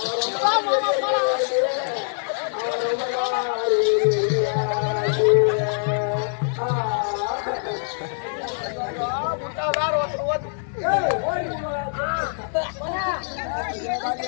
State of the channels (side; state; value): right; silent; digital silence